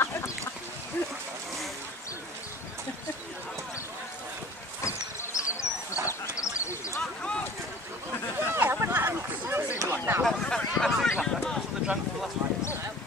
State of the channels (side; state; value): both; normal; correlation 0.45